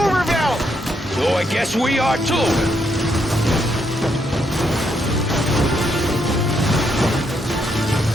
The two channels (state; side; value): normal; both; correlation 0.76